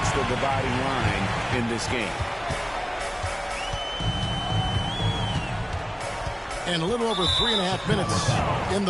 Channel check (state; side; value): identical; both; correlation 1.00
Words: the dividing line in this game. And a little over 3.5 minutes in the